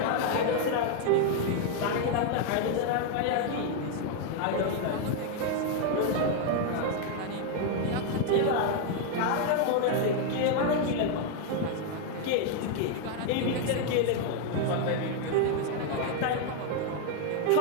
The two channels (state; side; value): different; both; correlation 0.01